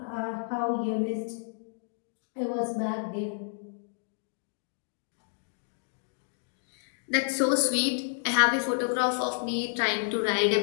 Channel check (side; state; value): right; silent; digital silence